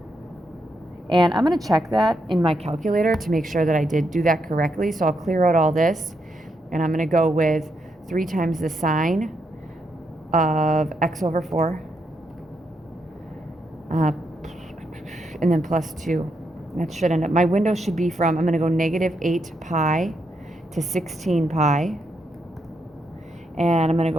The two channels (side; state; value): both; normal; correlation 0.80